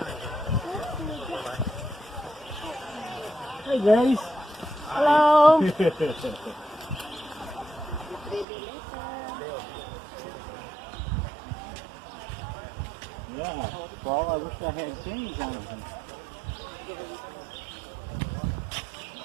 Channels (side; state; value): left; drops out; at 8.5 s